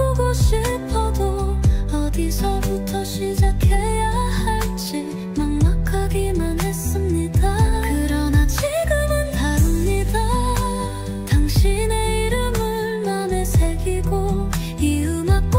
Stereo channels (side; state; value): both; identical; correlation 1.00